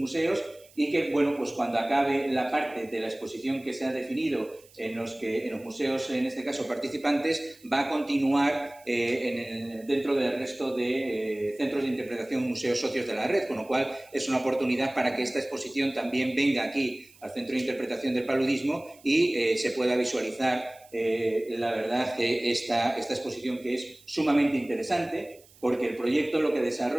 y que, bueno, pues cuando acabe la parte de la exposición que se ha definido en los museos, en este caso participantes, va a continuar dentro del resto de centros de interpretación, museos socios de la red, con lo cual es una oportunidad para que esta exposición también venga aquí al Centro de Interpretación del Paludismo y se pueda visualizar, la verdad, esta exposición, que es sumamente interesante, porque el proyecto lo que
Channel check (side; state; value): right; noise; hiss, 26 dB below the sound